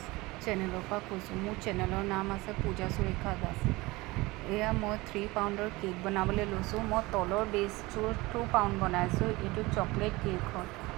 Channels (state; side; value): quieter; left; 21.7 dB